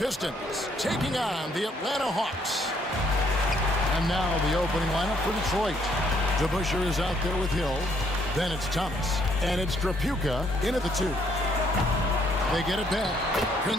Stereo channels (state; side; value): normal; both; correlation 0.68